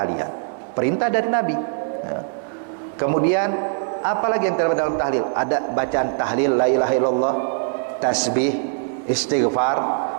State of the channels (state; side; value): silent; left; digital silence